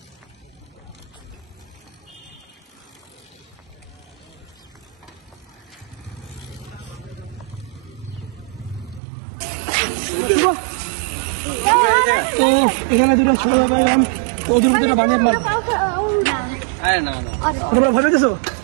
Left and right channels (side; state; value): left; drops out; at 9.0 s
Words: তো এখানে দুটো ছোট পাইলাম, তো ওদের ভিতরে বানিয়ে মারব। তোমরা ভয় পেয়েছো?